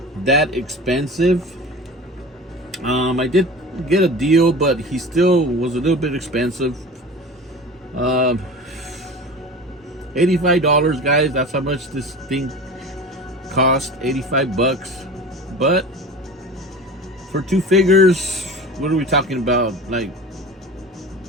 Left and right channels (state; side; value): normal; both; correlation 0.35